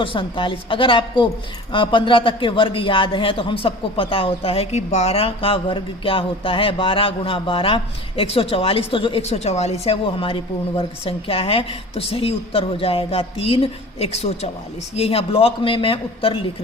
47। अगर आपको 15 तक के वर्ग याद हैं तो हम सबको पता होता है कि 12 का वर्ग क्या होता है। 12 गुणा 12 144। तो जो 144 है वो हमारी पूर्ण वर्ग संख्या है। तो सही उत्तर हो जाएगा 3, 144। ये यहाँ ब्लॉक में मैं उत्तर लिख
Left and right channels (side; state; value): both; normal; correlation 0.40